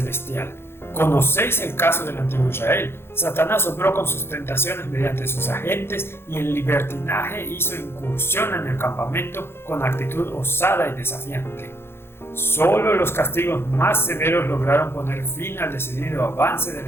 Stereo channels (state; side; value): late; right; 0.11 ms